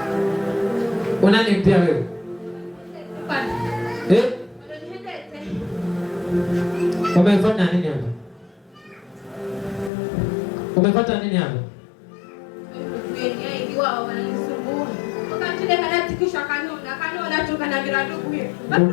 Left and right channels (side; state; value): right; drops out; at 9.9 s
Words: Unani pia wewe? Umefanya nini hapa? Umepata nini hapa?